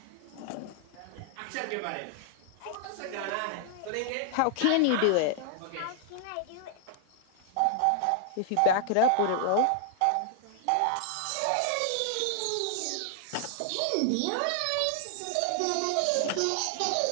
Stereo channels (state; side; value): different; both; correlation 0.00